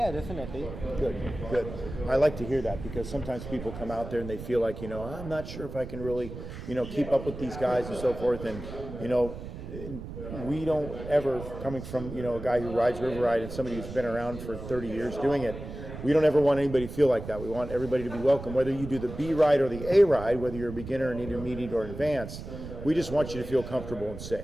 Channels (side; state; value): right; noise; rumble, 10 dB below the sound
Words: definitely. Good. I like to hear that because sometimes people come out there and they feel like, I'm not sure if I can really, keep up with these guys and so forth. And, we don't ever, coming from, a guy who rides River Ride and somebody who's been around for 30 years doing it, we don't ever want anybody to feel like that. We want everybody to be welcome, whether you do the B ride or the A ride, whether you're a beginner, an intermediate, or advanced. We just want you to feel comfortable and